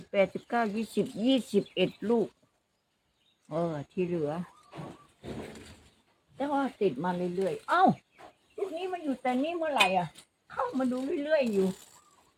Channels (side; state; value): both; identical; correlation 1.00